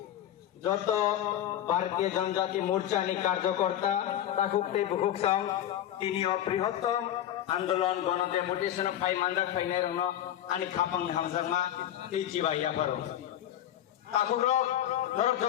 যত ভারতীয় জনজাতি মোর্চানি কার্যকর্তা তাকুকতে বুকুকসাং তিনি বৃহত্তম আন্দোলন গণ ডেপুটেশন ফাই মানজাক ফাইনাই রং আনি খাপাং হামজাংমা তি জিবাইয়া পারো তাকুরক নরক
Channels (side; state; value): right; quieter; 11.6 dB